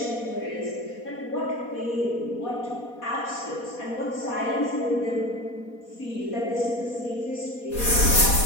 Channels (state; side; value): late; right; 4.2 ms